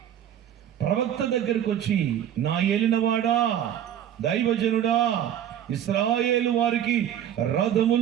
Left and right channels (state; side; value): quieter; left; 10.3 dB